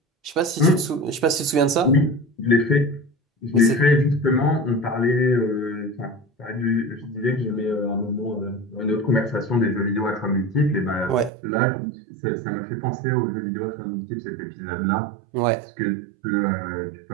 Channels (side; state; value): left; drops out; at 11.3 s